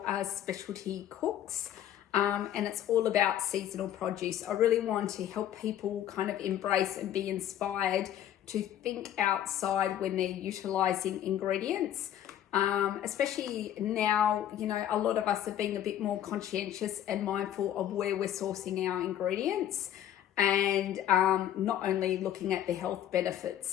specialty cooks, and it's all about seasonal produce. I really want to help people kind of embrace and be inspired to think outside when they're utilizing ingredients. Especially now, a lot of us are being a bit more conscientious and mindful of where we're sourcing our ingredients. And not only looking at the health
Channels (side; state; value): right; quieter; 11.2 dB